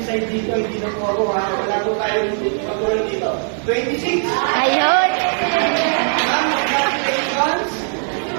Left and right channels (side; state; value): left; silent; 58 dB below the other